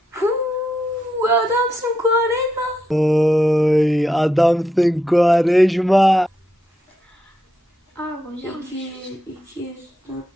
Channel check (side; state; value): both; normal; correlation 0.83